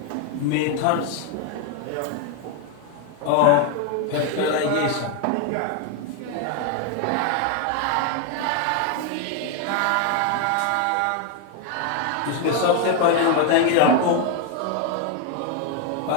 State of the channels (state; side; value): different; both; correlation 0.01